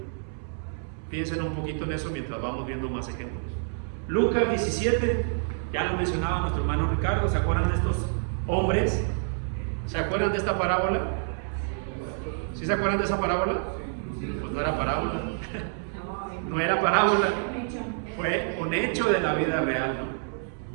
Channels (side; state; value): left; silent; 60 dB below the other